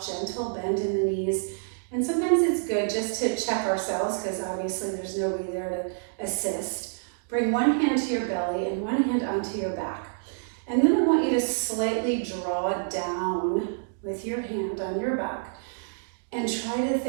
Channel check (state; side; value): silent; left; digital silence